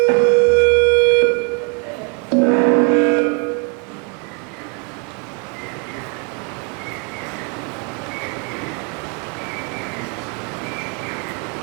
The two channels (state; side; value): quieter; left; 38.1 dB